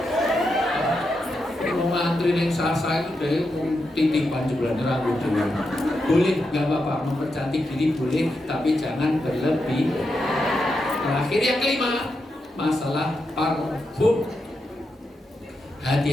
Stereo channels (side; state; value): both; normal; correlation 0.86